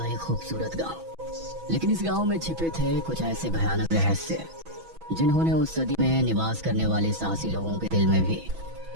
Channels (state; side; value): late; left; 6.1 ms